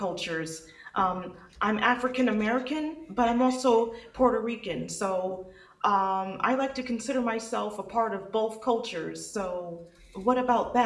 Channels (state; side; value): identical; both; correlation 1.00